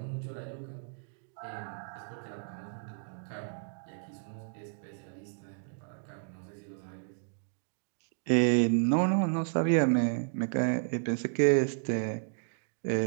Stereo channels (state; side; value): silent; left; digital silence